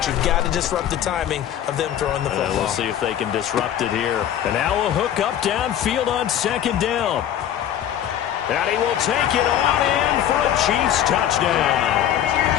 you've got to disrupt the timing of them throwing the football. We'll see if they can disrupt it here. And now a hook up downfield on second down. And he will take it on in for a Chiefs touchdown.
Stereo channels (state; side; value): quieter; right; 10.7 dB